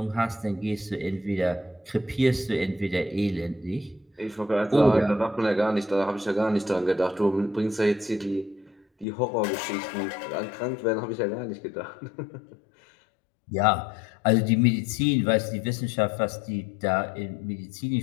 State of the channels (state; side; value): drops out; right; at 9.1 s